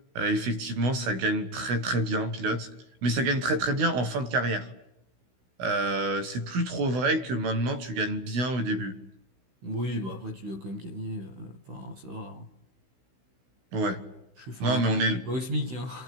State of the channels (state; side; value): late; left; 16 ms